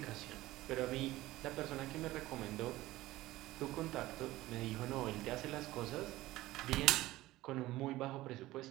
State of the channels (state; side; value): quieter; left; 17.3 dB